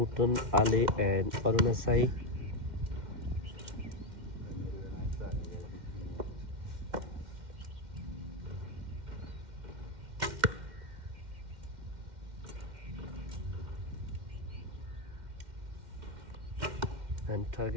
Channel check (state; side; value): late; left; 2.1 ms